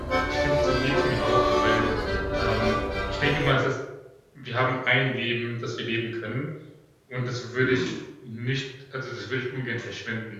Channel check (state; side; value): identical; both; correlation 1.00